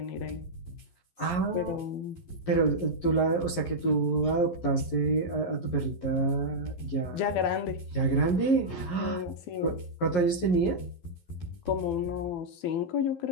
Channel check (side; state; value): right; late; 11 ms